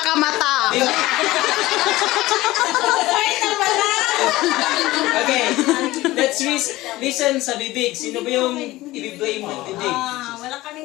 ka mata. Okay, let's listen sa bibig. Sino ba yung i-blame ng bibig? Wala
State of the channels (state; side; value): quieter; right; 18.0 dB